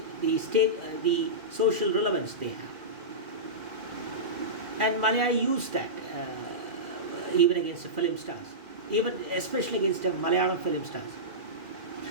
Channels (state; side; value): late; left; 2.5 ms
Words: social relevance they have. And Malayali used that even against the film stars, even especially against the Malayalam film stars.